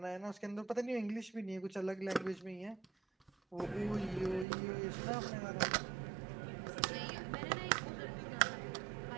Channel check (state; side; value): drops out; left; at 4.5 s